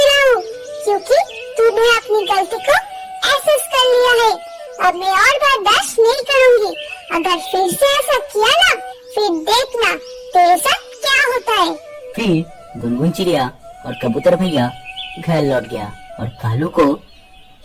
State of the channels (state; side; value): identical; both; correlation 1.00